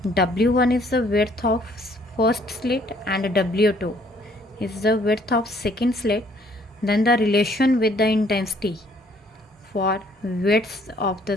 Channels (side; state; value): both; normal; correlation 0.63